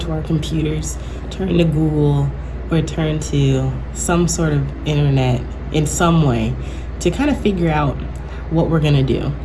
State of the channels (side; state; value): both; identical; correlation 1.00